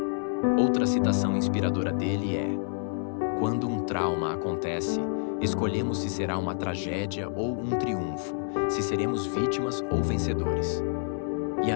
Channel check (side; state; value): right; silent; 59 dB below the other